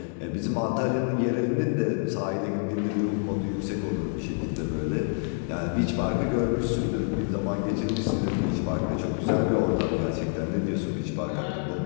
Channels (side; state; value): right; silent; 55 dB below the other